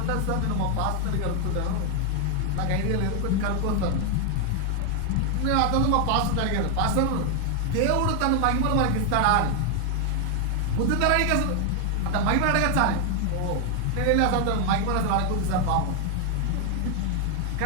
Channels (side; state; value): both; different; correlation 0.00